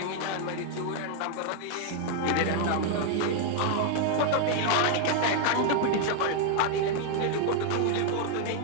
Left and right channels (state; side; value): different; both; correlation 0.00